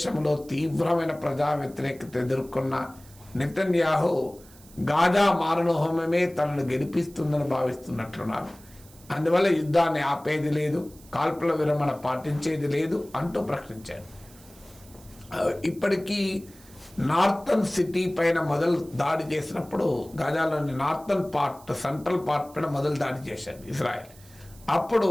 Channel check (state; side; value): noise; right; hiss, 24 dB below the sound